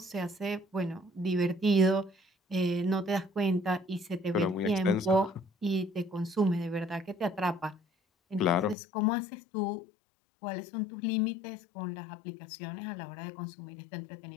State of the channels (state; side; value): drops out; right; at 8.8 s